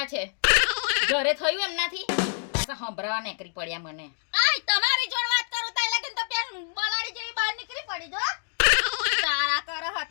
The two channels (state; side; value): silent; right; digital silence